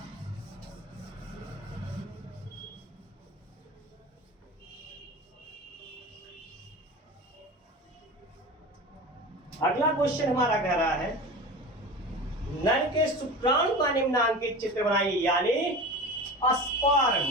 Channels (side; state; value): both; normal; correlation 0.32